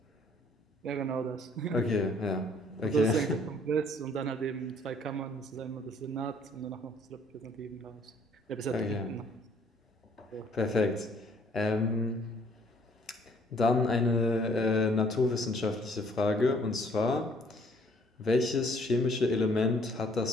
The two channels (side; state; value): both; normal; correlation 0.61